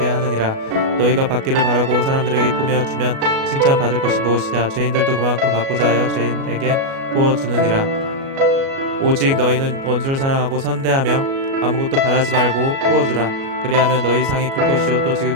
하느니라. 너희가 받기를 바라고 사람들에게 꾸며 주면 칭찬받을 것이 무엇이냐. 죄인들도 그만큼 받고자 하여 죄인에게 구워주느니라. 오직 너희는 원수를 사랑하고 선대하며 아무것도 바라지 말고 구워주라. 그리하면 너희 상이 클 것이요 또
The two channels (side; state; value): left; late; 37 ms